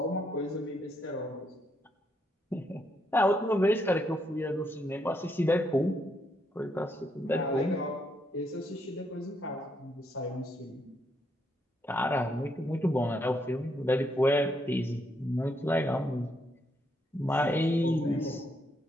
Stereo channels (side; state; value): both; normal; correlation 0.76